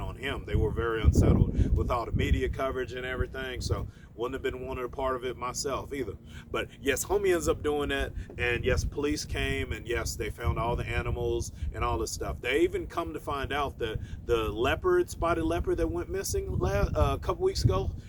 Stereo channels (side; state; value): both; identical; correlation 1.00